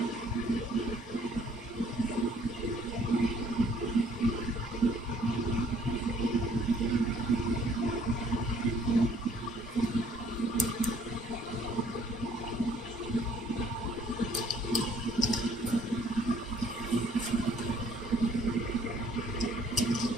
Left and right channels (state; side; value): normal; both; correlation 0.60